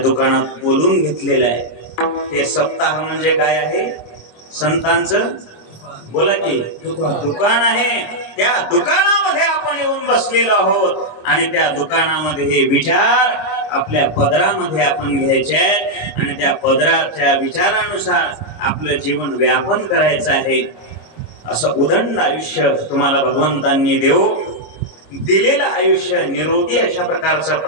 बोलून घेतलेलं आहे. हे सप्ताह म्हणजे काय आहे? संतांचं बोला की दुकान आहे. त्या दुकानामध्ये आपण येऊन बसलेलो आहोत आणि त्या दुकानामध्ये हे विचार आपल्या पदरामध्ये आपण घ्यायचे आहेत आणि त्या पदराच्या विचारानुसार आपलं जीवन व्यापन करायचं आहे. असं उदंड आयुष्य तुम्हाला भगवंतांनी दिलेलं आयुष्य निरोगी अशा प्रकारचं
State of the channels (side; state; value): right; late; 25 ms